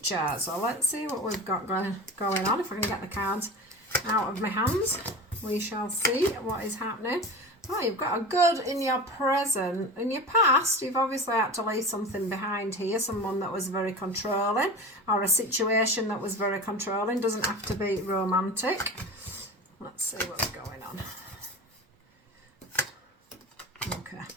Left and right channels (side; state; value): both; normal; correlation 0.32